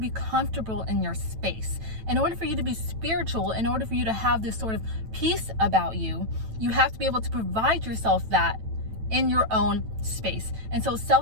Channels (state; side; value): late; left; 9.1 ms